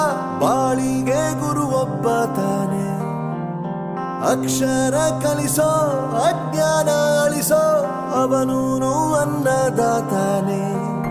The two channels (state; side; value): identical; both; correlation 1.00